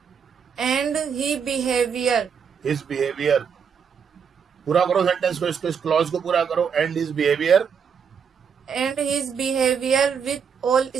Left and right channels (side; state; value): left; quieter; 6.8 dB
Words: and His behavior. पूरा करो सेंटेंस को, इसको, इस क्लॉज को पूरा करो. And his behavior. with all